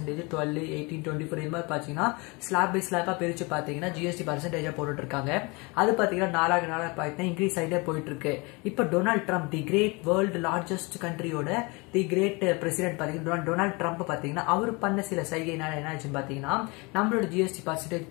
12, 18, 24 இது மாதிரி பார்த்தீங்கன்னா ஸ்லாப் பை ஸ்லாப்பாக பிரித்து பார்த்தீங்கன்னா ஜிஎஸ்டி பர்சன்டேஜாக போட்டுட்ருக்காங்க. அது பார்த்தீங்கன்னா நாளாக பார்த்தீங்கன்னா இன்க்ரீஸ் ஆகிட்டே போயிட்டு இருக்கு. இப்போ டொனால்ட் ட்ரம்ப் தி கிரேட் வேர்ல்டு லார்ஜஸ்ட் கண்ட்ரியோட தி கிரேட் பிரசிடென்ட் பார்த்தீங்கன்னா டொனால்ட் ட்ரம்ப் பார்த்தீங்கன்னா அவர் பண்ண சில சைகைனால என்ன ஆச்சுன்னு பார்த்தீங்கன்னா நம்மளோட ஜிஎஸ்டி பர்சன்டேஜ்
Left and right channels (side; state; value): right; quieter; 27.6 dB